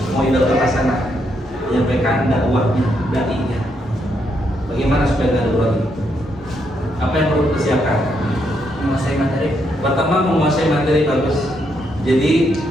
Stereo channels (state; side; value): normal; both; correlation 0.77